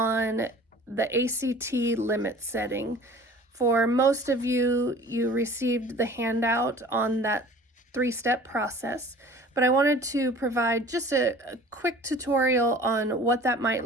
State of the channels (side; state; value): both; normal; correlation 0.46